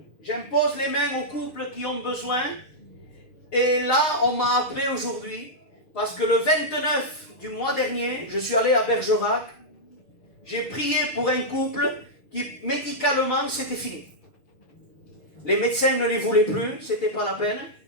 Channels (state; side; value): late; right; 6.4 ms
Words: J'impose les mains aux couples qui ont besoin. Et là, on m'a appelé aujourd'hui, parce que le 29 du mois dernier, je suis allé à Bergerac. J'ai prié pour un couple qui, médicalement, c'était fini. Les médecins ne les voulaient plus, c'était pas la peine.